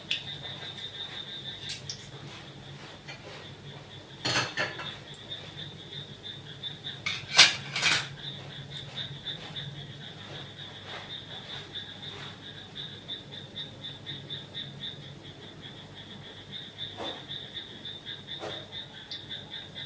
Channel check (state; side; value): identical; both; correlation 1.00